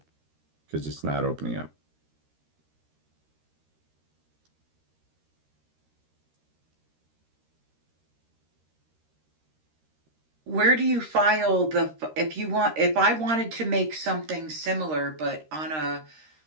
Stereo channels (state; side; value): late; left; 13 ms